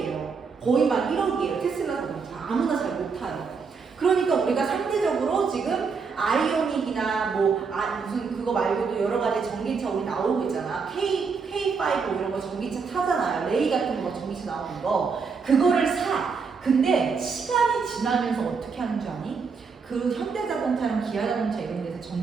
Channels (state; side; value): quieter; left; 5.3 dB